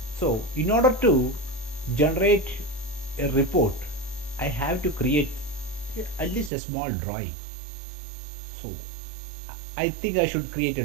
So in order to generate a report, I have to create at least a small drawing. So I think I should create a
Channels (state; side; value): drops out; left; at 6.5 s